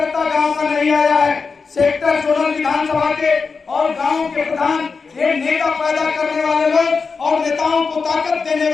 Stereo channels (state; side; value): quieter; right; 4.9 dB